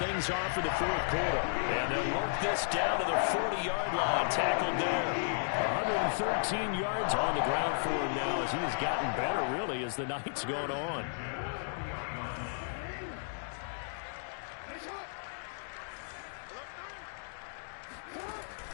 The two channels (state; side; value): silent; right; digital silence